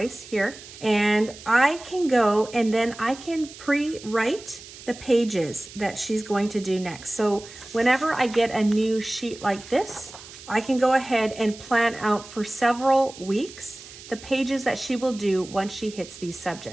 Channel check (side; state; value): right; noise; hiss, 17 dB below the sound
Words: here, and I can go and then I can pre-write the pages that she's going to do next. So whenever I get a new sheet like this, I can go ahead and plan out for several weeks the pages that she will do once she hits these